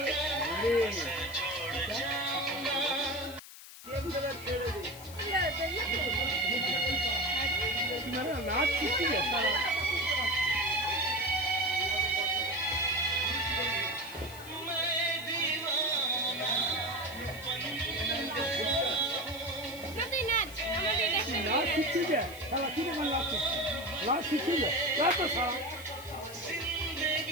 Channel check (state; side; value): noise; left; hiss, 16 dB below the sound